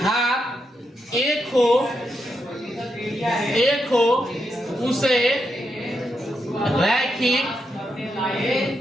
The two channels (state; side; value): normal; both; correlation 0.83